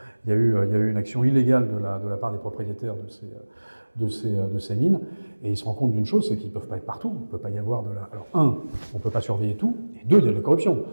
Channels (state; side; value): inverted; both; correlation -1.00